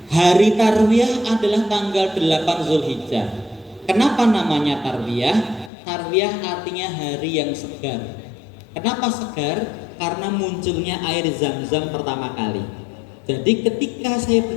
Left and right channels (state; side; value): drops out; right; at 5.7 s